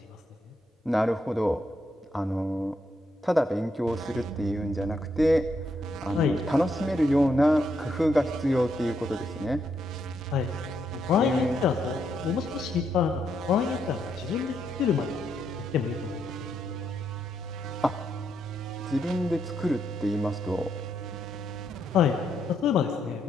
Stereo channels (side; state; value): both; normal; correlation 0.78